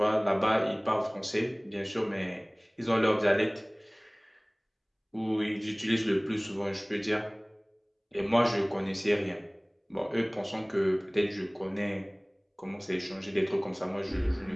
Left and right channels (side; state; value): both; identical; correlation 1.00